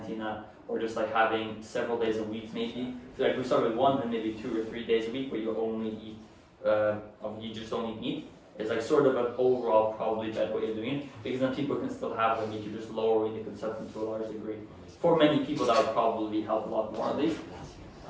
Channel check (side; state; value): both; identical; correlation 1.00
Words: or just like having several days a week maybe. So like we start with 1 and maybe 2 or 3 days a week where you only eat, you just don't eat meat. It's like sort of an overall probably better way of doing it, because then people can still have the meat, you're just lowering the consumption to a large degree. For many people that would probably help a lot more at least.